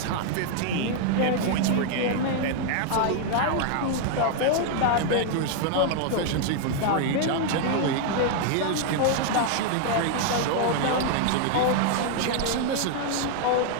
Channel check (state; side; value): different; both; correlation 0.00